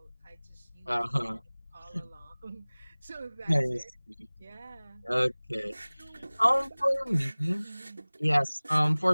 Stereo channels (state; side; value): inverted; both; correlation -1.00